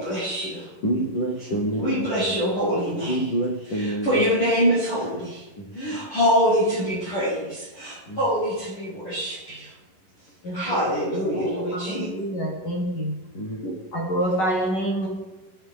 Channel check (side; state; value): right; late; 11 ms